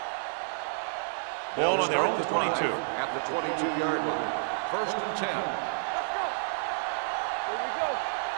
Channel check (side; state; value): left; silent; digital silence